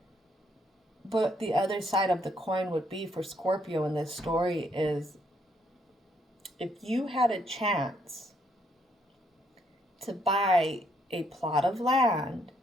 But the other side of the coin would be for Scorpio in this story is, if you had a chance to buy a plot of land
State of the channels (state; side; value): normal; both; correlation 0.71